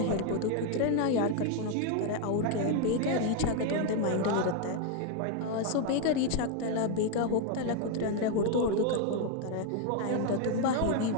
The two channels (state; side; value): different; both; correlation 0.01